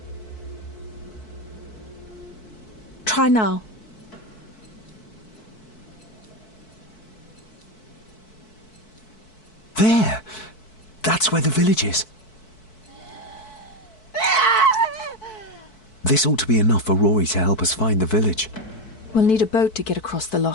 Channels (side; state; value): right; late; 4.6 ms